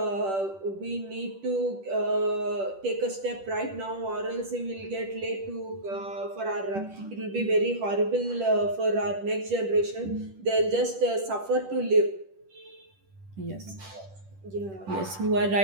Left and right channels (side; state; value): left; late; 10 ms